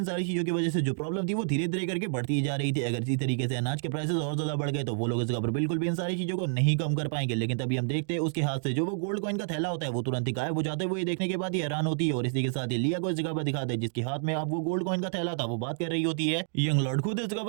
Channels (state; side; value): silent; left; 58 dB below the other